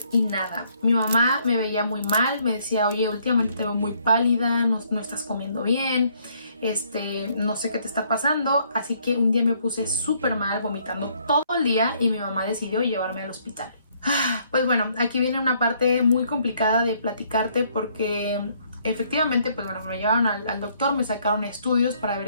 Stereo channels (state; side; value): inverted; both; correlation -0.67